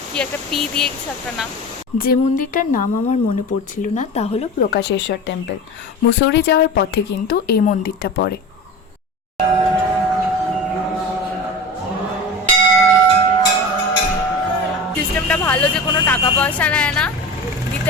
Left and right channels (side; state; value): both; normal; correlation 0.31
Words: কি একটা পি দিয়ে কিছু একটা নাম। যে মন্দিরটার নাম আমার মনে পড়ছিল না তা হলো প্রকাশেশ্বর টেম্পল। মুসৌরি যাওয়ার পথে কিন্তু এই মন্দিরটা পড়ে। সিস্টেমটা ভালো যে কোনো টাকা পয়সা নেয় না,